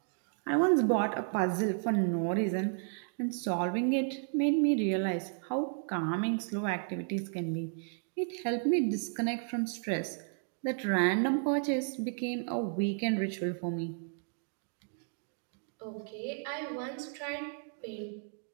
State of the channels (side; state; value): left; silent; 56 dB below the other